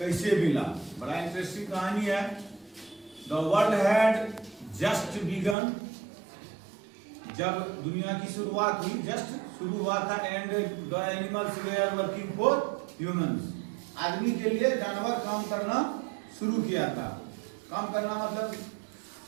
मिला। बड़ा इंटरेस्टिंग कहानी है। The world had just begun, जब दुनिया की शुरुआत हुई, जस्ट शुरू हुआ था। And the animals were working for humans, आदमी के लिए जानवर काम करना शुरू किया था। काम करना मतलब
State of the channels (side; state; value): left; drops out; at 5.6 s